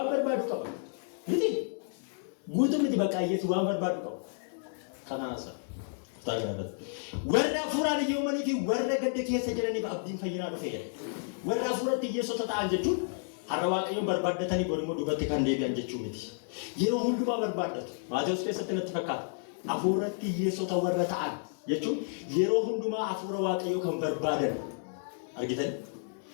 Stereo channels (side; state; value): right; silent; digital silence